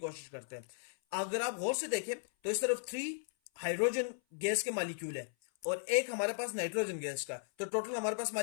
करते हैं। अगर आप गौर से देखें तो इस तरफ 3 हाइड्रोजन गैस के मॉलिक्यूल है और एक हमारे पास नाइट्रोजन गैस का, तो टोटल हमारे पास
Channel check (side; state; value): right; silent; 54 dB below the other